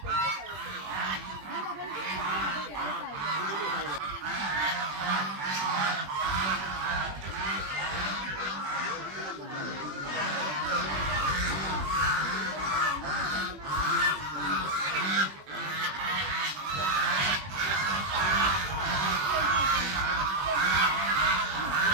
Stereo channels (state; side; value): late; left; 21 ms